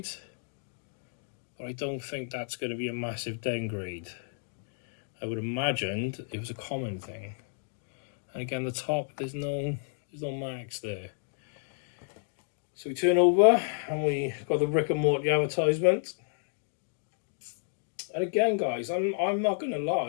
but I don't think that's going to be a massive downgrade. I would imagine it was a common thing. And again, the top, there's no marks there. So we turn over and we got the Rick and Morty advertisement. And again, guys, I'm not going to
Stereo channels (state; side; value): silent; right; digital silence